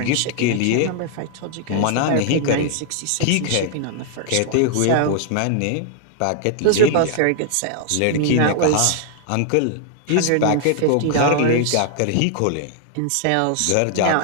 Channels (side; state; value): both; different; correlation 0.00